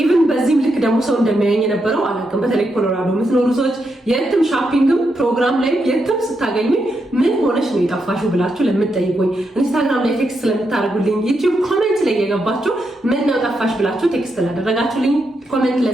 በዚህም ልክ ደግሞ ሰው እንደሚያየኝ የነበረው አላውቅም። በተለይ ኮሎራዶ የምትኖሩ ሰዎች የትም ሻፒንግም ፕሮግራም ላይ የትም ስታገኙኝ ምን ሆነሽ ነው የጠፋሽው ብላችሁ ለምትጠይቁኝ፣ ኢንስታግራም ላይ ቴክስት ስለምታደርጉልኝ፣ ዩቲዩብ ኮሜንት ላይ የገባችሁ ምን ነው ጠፋሽ ብላችሁ ቴክስት ላደረጋችሁልኝ፣ ኮሜንት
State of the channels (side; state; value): both; normal; correlation 0.83